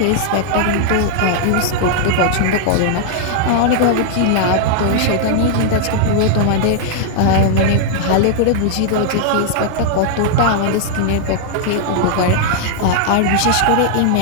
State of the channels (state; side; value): different; both; correlation -0.01